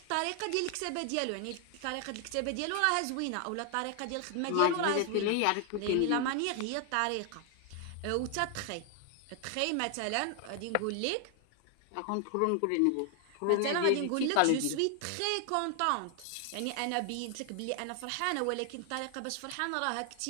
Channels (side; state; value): both; different; correlation 0.00